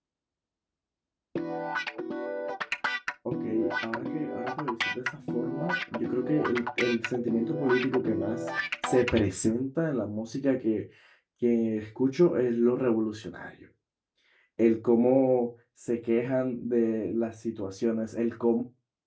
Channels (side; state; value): both; identical; correlation 1.00